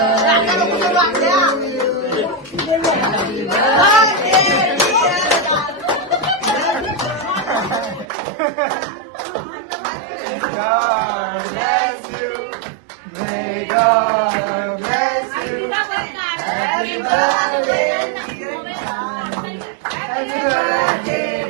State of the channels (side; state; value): left; drops out; at 8.1 s